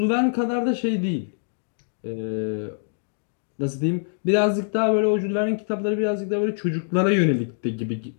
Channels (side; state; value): right; silent; digital silence